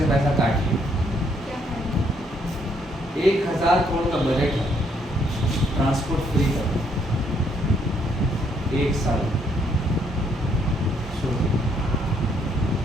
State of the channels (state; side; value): normal; both; correlation 0.70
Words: पैसा काट लिया। 1000 करोड़ का बजट है ट्रांसपोर्ट फ्री का, 1 साल।